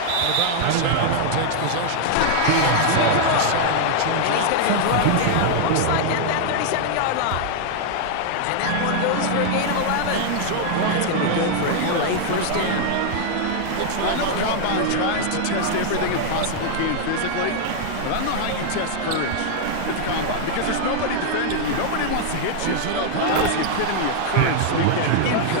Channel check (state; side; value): different; both; correlation 0.00